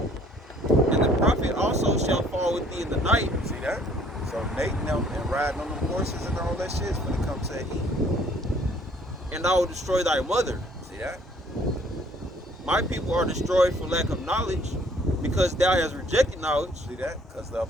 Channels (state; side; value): normal; both; correlation 0.59